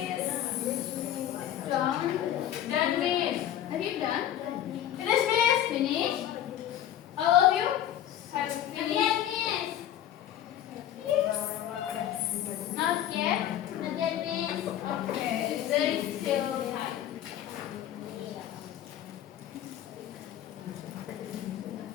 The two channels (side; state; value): right; quieter; 11.4 dB